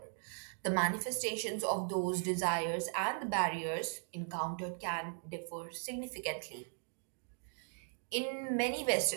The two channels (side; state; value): left; silent; 52 dB below the other